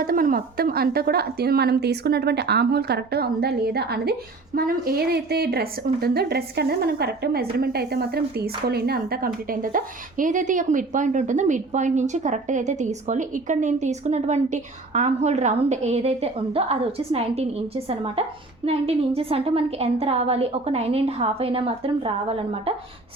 మనం మొత్తం అంతా కూడా మనం తీసుకున్నటువంటి ఆర్మ్ హోల్ కరెక్ట్గా ఉందా లేదా అనేది మనం ఏదైతే డ్రెస్ ఉంటుందో డ్రెస్కి అనేది మనం కరెక్ట్గా మెజర్మెంట్ అయితే మాత్రం తీసుకోలేండి. అంతా కంప్లీట్ అయిన తర్వాత ఏదైతే ఒక మిడ్ పాయింట్ ఉంటుందో మిడ్ పాయింట్ నుంచి కరెక్ట్గా అయితే తీసుకోవాలి. ఇక్కడ నేను తీసుకున్నటువంటి ఆర్మ్ హోల్ రౌండ్ ఏదైతే ఉందో అది వచ్చేసి 19 ఇంచెస్ అనమాట. 19 ఇంచెస్ అంటే మనకి ఎంత రావాలి, ఒక 9.5 అయినా మాత్రం రావాలన్నమాట.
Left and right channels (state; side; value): quieter; left; 3.4 dB